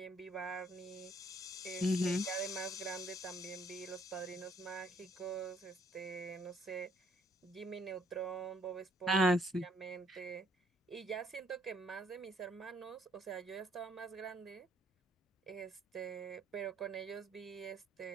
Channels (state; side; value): normal; both; correlation 0.65